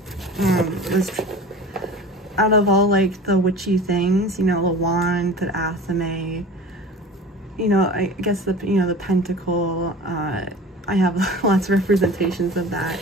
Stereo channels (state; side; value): normal; both; correlation 0.39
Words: was, out of all like the witchy things, you know, the wand, the athame, you know, I guess the, you know, the pentacle, I have lots of representations of that.